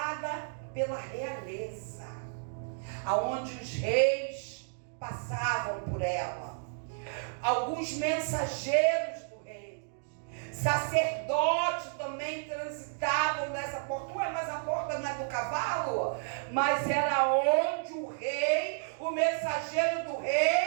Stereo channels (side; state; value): left; silent; digital silence